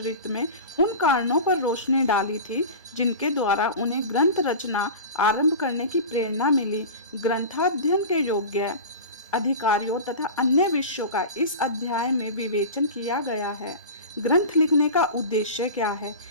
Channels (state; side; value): inverted; both; correlation -0.31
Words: में उन कारणों पर रोशनी डाली थी जिनके द्वारा उन्हें ग्रंथ रचना आरंभ करने की प्रेरणा मिली। ग्रंथाध्ययन के योग्य अधिकारियों तथा अन्य विषयों का इस अध्याय में विवेचन किया गया है। ग्रंथ लिखने का उद्देश्य क्या है,